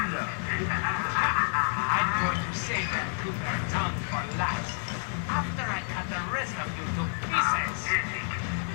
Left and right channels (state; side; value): silent; right; 58 dB below the other